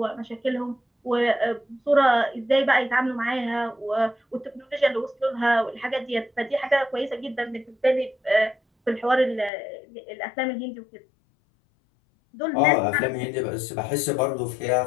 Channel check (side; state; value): right; drops out; at 9.5 s